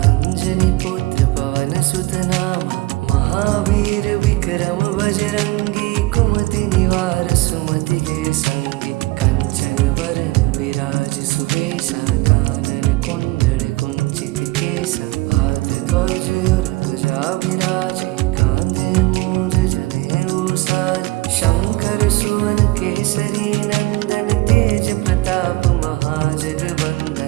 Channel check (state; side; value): quieter; left; 20.4 dB